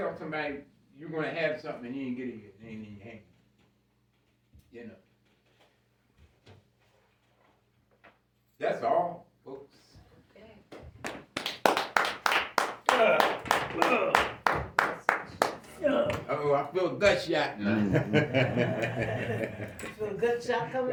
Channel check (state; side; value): identical; both; correlation 1.00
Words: somebody you're going to have something and you ain't get it yet. It ain't in your hand. That's all, folks. Okay. Oh, I feel gut shot now. You feel a good shot coming?